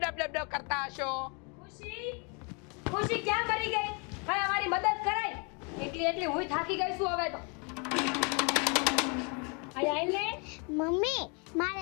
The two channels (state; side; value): quieter; right; 34.3 dB